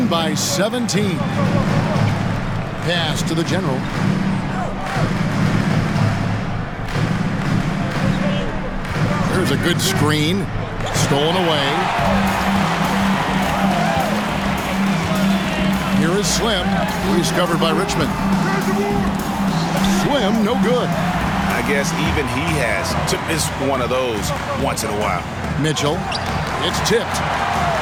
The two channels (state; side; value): identical; both; correlation 1.00